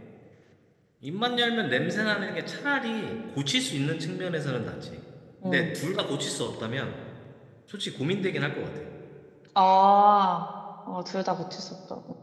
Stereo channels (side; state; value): both; identical; correlation 1.00